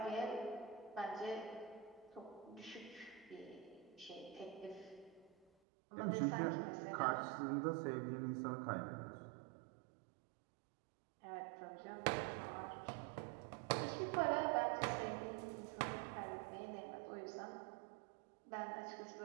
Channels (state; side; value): drops out; left; at 5.5 s